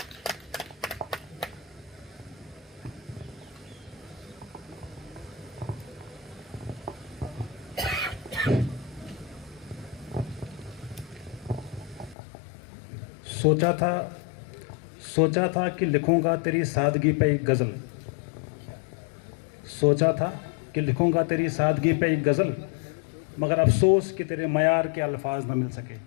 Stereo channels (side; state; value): right; drops out; at 12.2 s